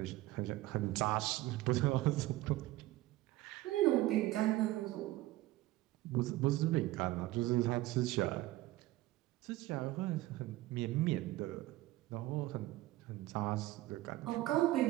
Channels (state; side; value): quieter; left; 17.2 dB